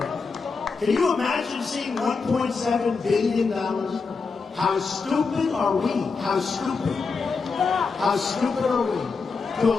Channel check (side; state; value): right; quieter; 4.7 dB